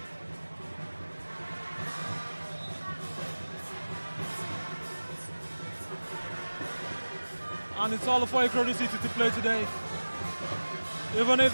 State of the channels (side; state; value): both; inverted; correlation -1.00